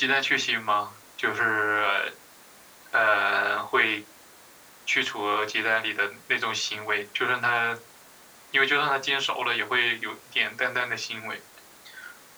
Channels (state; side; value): identical; both; correlation 1.00